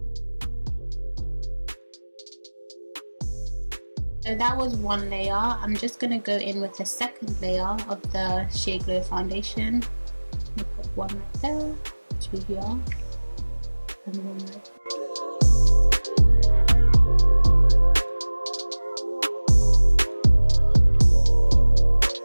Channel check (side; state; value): both; inverted; correlation -1.00